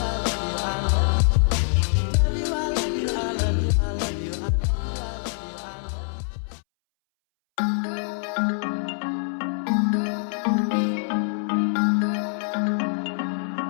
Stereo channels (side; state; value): right; silent; 62 dB below the other